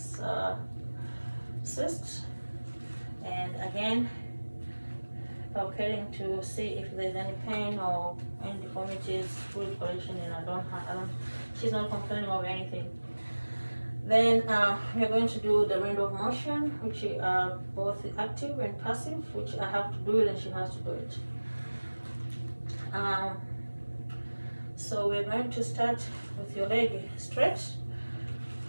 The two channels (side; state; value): both; inverted; correlation -1.00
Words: cyst. And again, palpating to see if there's any pain or any deformities, fluid collection, and she's not complaining of anything. Then we're going to do the range of motion, which are both active and passive, which I have to do it and she has to do it. So we're going to start with your leg stretch,